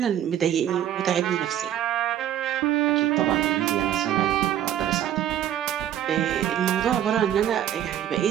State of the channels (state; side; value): quieter; left; 10.9 dB